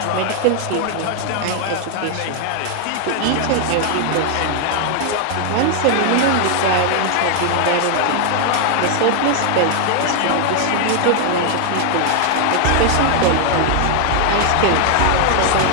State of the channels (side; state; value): both; different; correlation 0.00